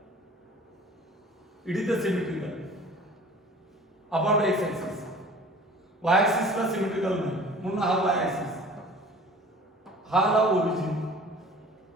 it is the symmetrical about X axis. Y axis ला सिमेट्रिकल नाही म्हणून हा वाय एक्सिस, हा ला ओरिजिन.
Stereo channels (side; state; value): both; normal; correlation 0.45